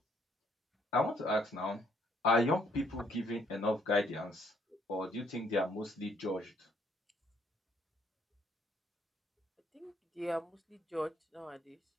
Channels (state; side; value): normal; both; correlation 0.67